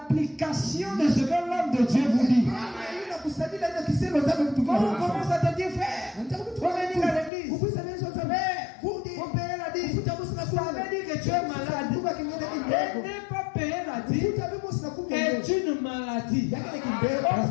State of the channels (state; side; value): drops out; right; at 7.3 s